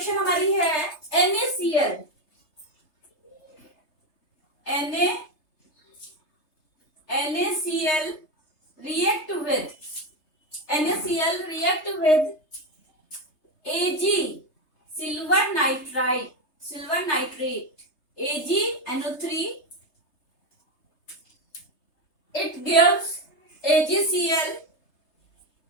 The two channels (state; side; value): late; right; 3.3 ms